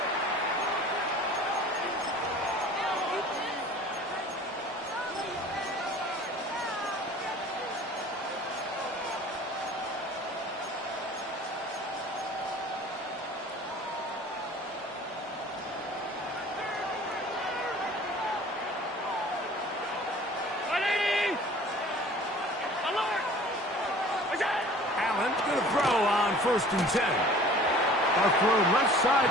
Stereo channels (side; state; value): both; normal; correlation 0.47